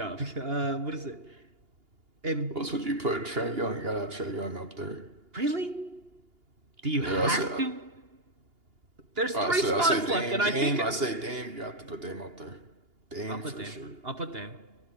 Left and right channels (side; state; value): left; late; 2.8 ms